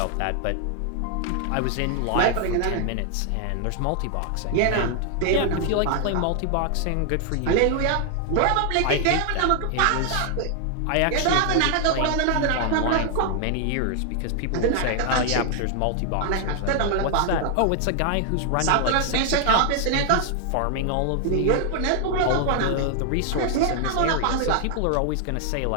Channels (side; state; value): both; different; correlation 0.00